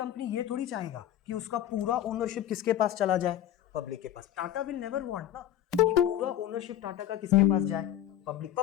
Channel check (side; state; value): right; quieter; 11.9 dB